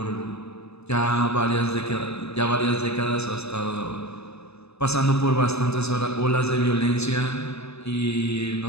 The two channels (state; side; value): late; right; 0.79 ms